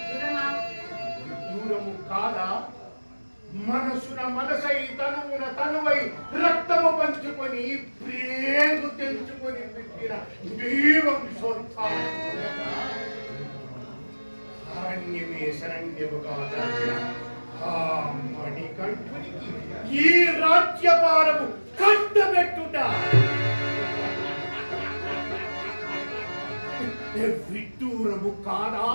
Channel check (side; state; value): both; inverted; correlation -1.00